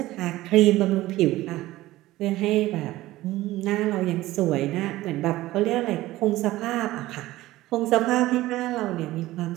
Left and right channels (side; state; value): left; quieter; 16.9 dB